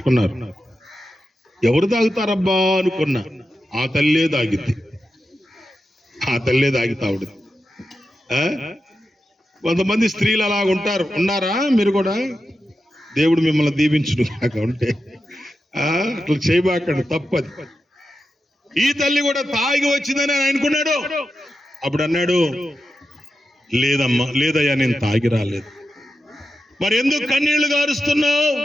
ఎవరు తాగుతారబ్బా అనుకున్నా. ఆ తల్లే తాగిద్ది. తాగుడు. కొంతమంది స్త్రీలు అలా ఉన్నారా? మీరు కూడా దేవుడు మిమ్మల్ని దీవించును కాక ఉంటే అట్లా చేయబాకండి, తప్పది. ఈ తల్లి కూడా తాగి వచ్చిందని ఆయన అనుకున్నాడు. అప్పుడు అన్నాడు, లేదయ్యా, నేను తాగి రాలేదు. మరి ఎందుకు కన్నీళ్లు గారుస్తున్నావు?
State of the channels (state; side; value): normal; both; correlation 0.90